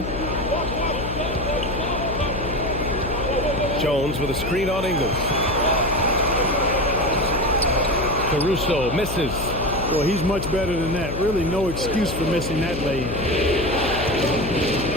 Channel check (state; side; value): noise; left; hum, 6 dB below the sound